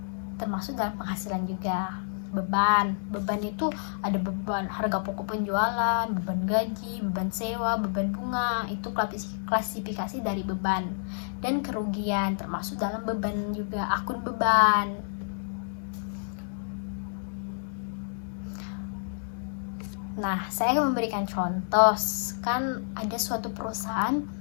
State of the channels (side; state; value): right; silent; 58 dB below the other